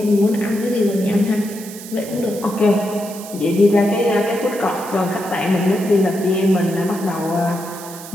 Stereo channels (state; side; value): noise; right; hiss, 15 dB below the sound